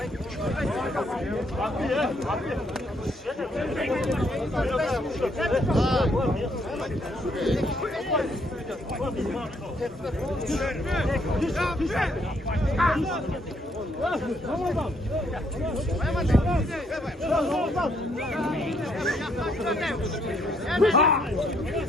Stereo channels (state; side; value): normal; both; correlation 0.71